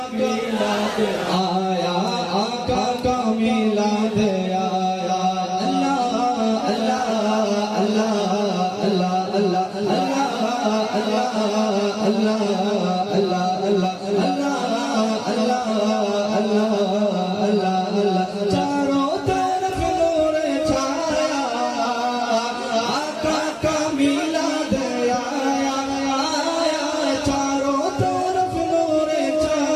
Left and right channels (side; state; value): both; identical; correlation 1.00